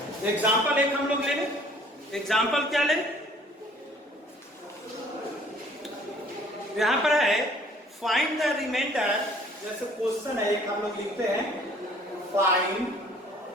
एग्जांपल एक हम लोग ले लें। एग्जांपल क्या ले? यहां पर है फाइंड द रिमाइंडर, जैसे क्वेश्चन है एक हम लोग लिखते हैं, find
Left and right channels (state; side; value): normal; both; correlation 0.56